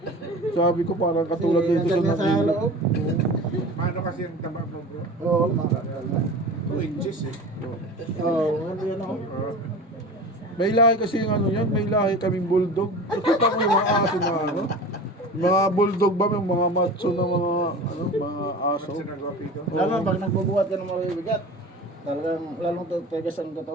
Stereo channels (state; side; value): normal; both; correlation 0.35